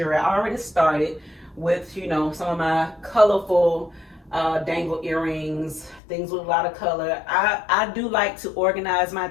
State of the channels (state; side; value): drops out; right; at 6.0 s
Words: I already started with, you know, some of my colorful dangle earrings, things with a lot of color. I do like to organize my